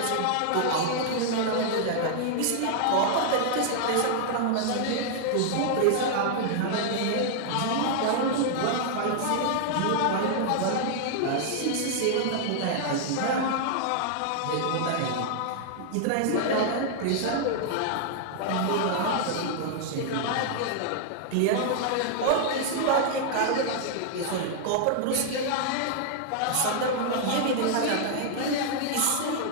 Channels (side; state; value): both; different; correlation -0.01